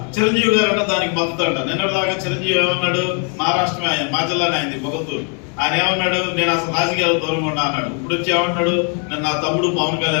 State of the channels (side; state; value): right; quieter; 39.6 dB